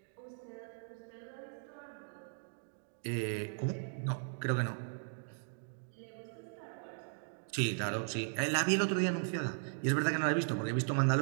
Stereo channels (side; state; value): left; silent; digital silence